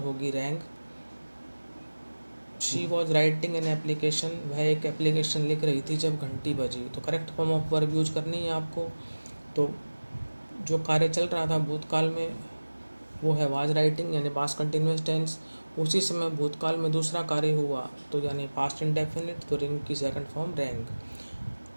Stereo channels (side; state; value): both; inverted; correlation -1.00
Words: होगी wrong. She was writing an application, वह एक एप्लीकेशन लिख रही थी जब घंटी बजी. तो correct form of verb use करनी है आपको. तो जो कार्य चल रहा था भूतकाल में वो है वाज राइटिंग, यानी पास्ट कंटिन्यूअस टेंस. उसी समय भूतकाल में दूसरा कार्य हुआ, तो यानी पास्ट इंडेफिनिट, तो रिंग की second form rang.